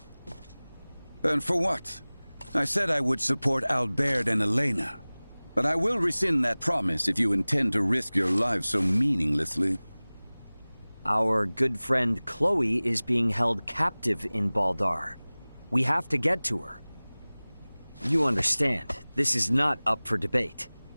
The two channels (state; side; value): inverted; both; correlation -1.00